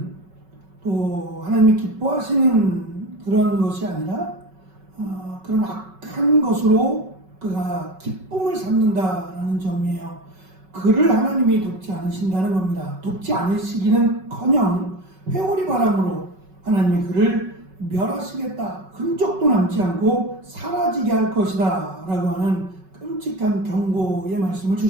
또 하나님이 기뻐하시는 그런 것이 아니라 그런 악한 것으로 그가 기쁨을 삼는다라는 점이에요. 그를 하나님이 돕지 않으신다는 겁니다. 돕지 않으시기는커녕 회오리 바람으로 하나님이 그를 멸하시겠다, 흔적도 남지 않고 사라지게 할 것이다 라고 하는 끔찍한 경고의 말씀을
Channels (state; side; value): late; left; 5.3 ms